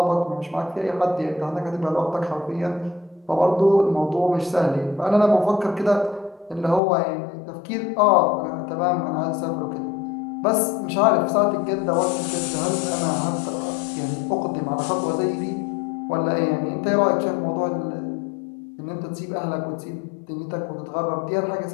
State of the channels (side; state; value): right; drops out; at 6.8 s